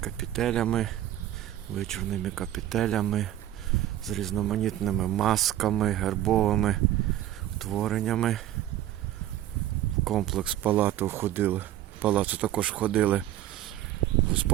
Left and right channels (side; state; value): left; quieter; 13.2 dB